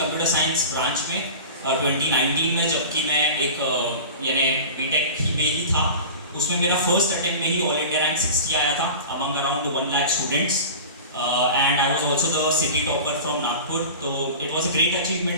साइंस ब्रांच में 2019 में, जबकि मैं एक यानी बीटेक में ही था. उसमें मेरा फर्स्ट अटेम्प्ट में ही ऑल इंडिया रैंक 60 आया था among around 1 lakh students, and I was also the city topper from Nagpur. तो it was a great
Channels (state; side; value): inverted; both; correlation -0.34